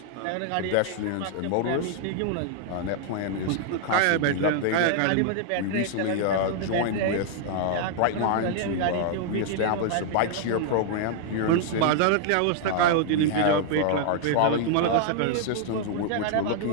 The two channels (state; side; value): different; both; correlation 0.00